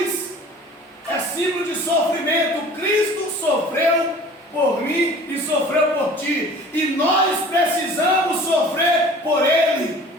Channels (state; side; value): normal; both; correlation 0.45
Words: é símbolo de sofrimento. Cristo sofreu por mim e sofreu por ti, e nós precisamos sofrer por Ele.